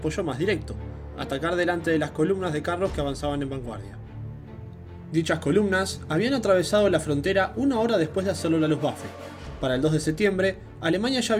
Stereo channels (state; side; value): identical; both; correlation 1.00